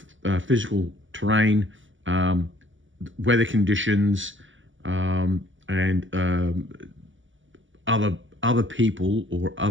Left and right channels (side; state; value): left; late; 0.56 ms